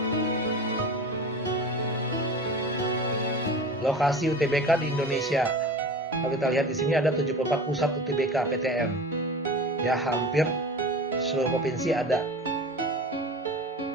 Lokasi UTBK di Indonesia. Kalau kita lihat di sini ada 74 pusat UTBK PTN. Ya, hampir seluruh provinsi ada.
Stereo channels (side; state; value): both; normal; correlation 0.34